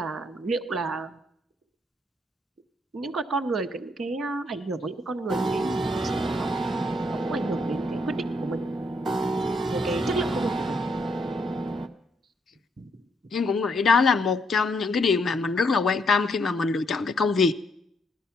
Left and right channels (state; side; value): normal; both; correlation 0.74